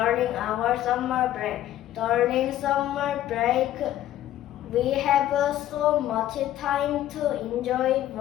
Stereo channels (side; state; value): right; quieter; 13.1 dB